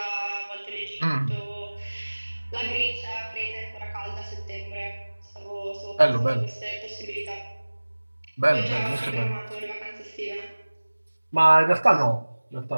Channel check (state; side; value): inverted; both; correlation -1.00